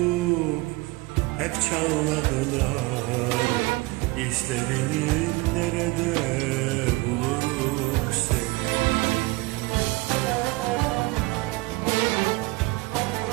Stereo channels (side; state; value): left; quieter; 22.6 dB